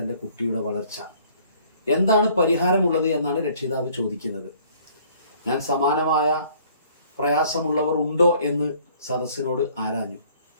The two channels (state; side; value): inverted; both; correlation -0.57